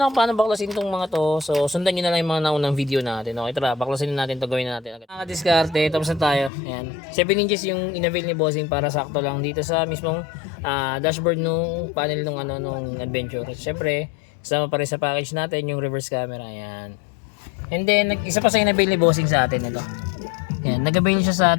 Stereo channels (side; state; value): right; drops out; at 6.5 s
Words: ako paano baklasin itong mga to. So, sundan nyo na lang yung mga naunang video natin. Okay, tara, baklasin na natin ito. Gawin na natin. Mga diskarte, tapos na tayo. Yan. 7 inches yung inavail ni Bossing para sakto lang dito sa mismong dashboard nung panel nung Adventure. Siyempre, kasama pa rin sa package natin yung reverse camera. Yan. And then, isa pa sa inavail ni Bossing sa atin ito. Yan, nag-avail siya sa